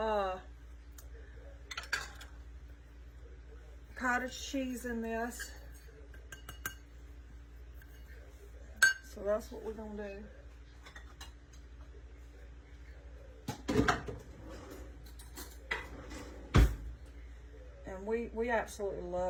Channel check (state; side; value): identical; both; correlation 1.00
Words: cottage cheese in this. So that's what we're going to do. And we absolutely